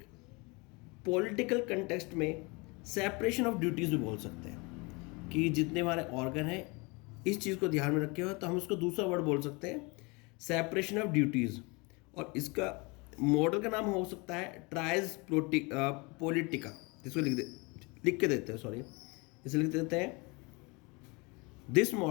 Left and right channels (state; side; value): quieter; right; 27.9 dB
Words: पॉलिटिकल कंटेक्स्ट में सेपरेशन ऑफ ड्यूटीज़ भी बोल सकते हैं, कि जितने हमारे ऑर्गन हैं इस चीज़ को ध्यान में रखे हो, तो हम उसको दूसरा वर्ड बोल सकते हैं, सेपरेशन ऑफ ड्यूटीज़। और इसका मॉडल का नाम हो सकता है ट्राइज पॉलिटिका, जिसको लिख के देते हैं, सॉरी इसे लिख देते हैं, this